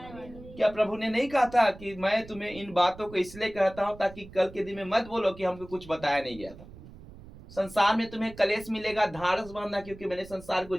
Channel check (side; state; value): right; noise; rumble, 18 dB below the sound